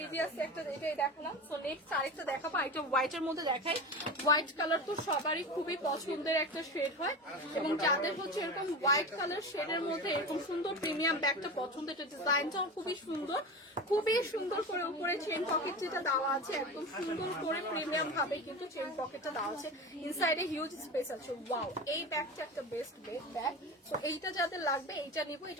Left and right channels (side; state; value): both; normal; correlation 0.27